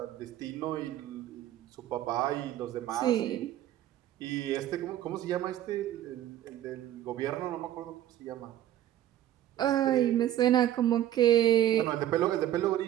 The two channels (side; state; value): left; quieter; 12.4 dB